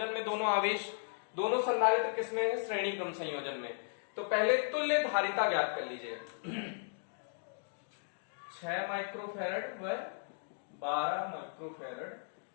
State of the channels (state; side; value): silent; right; digital silence